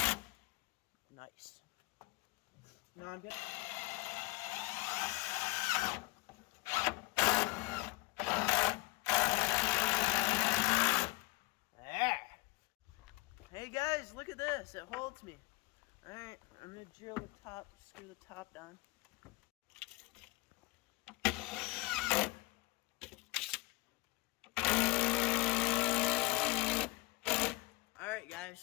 Nice. Now I'm gonna... There. Hey guys, look at this. It holds me. Alright, I'm gonna drill the top, screw the top down. Alright guys,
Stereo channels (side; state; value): right; quieter; 22.7 dB